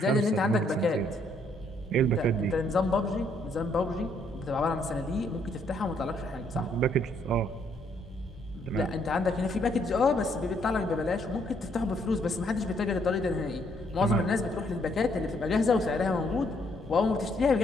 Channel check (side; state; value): both; normal; correlation 0.70